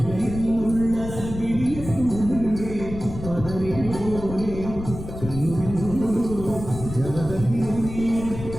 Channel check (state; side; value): noise; left; rumble, 10 dB below the sound